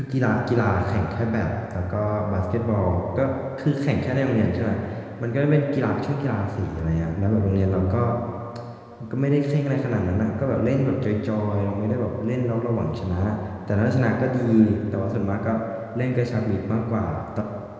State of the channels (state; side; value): identical; both; correlation 1.00